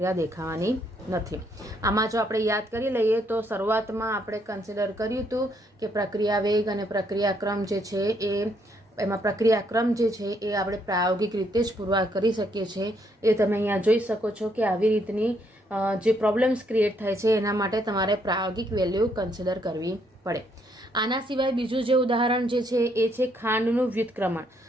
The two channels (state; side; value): normal; both; correlation 0.72